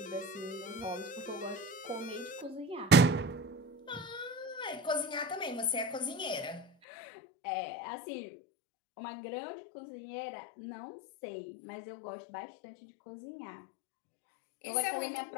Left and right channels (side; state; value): right; drops out; at 6.7 s